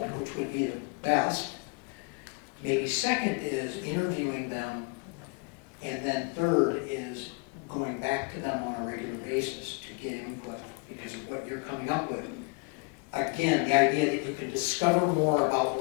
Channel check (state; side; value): quieter; right; 31.3 dB